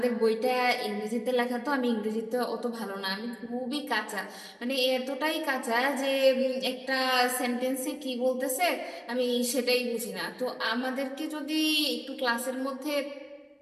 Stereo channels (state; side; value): identical; both; correlation 1.00